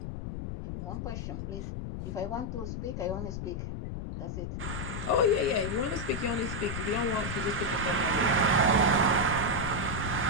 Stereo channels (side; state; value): left; noise; rumble, 5 dB below the sound